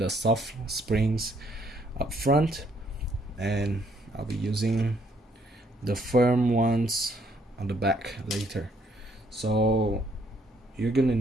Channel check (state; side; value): normal; both; correlation 0.68